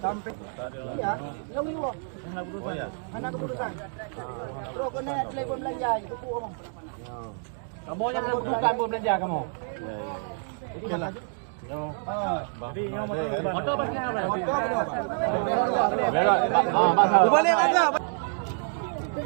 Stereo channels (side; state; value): left; silent; 60 dB below the other